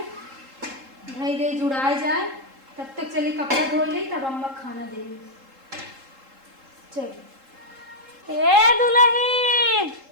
भाई दे जुड़ाए जाए तब तक चली कपड़ा धो ले तब अम्मा खाना दे चल ए दुल्हन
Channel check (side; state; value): left; late; 3.7 ms